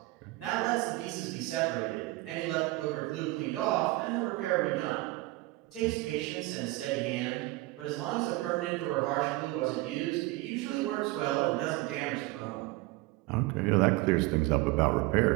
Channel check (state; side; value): quieter; left; 20.4 dB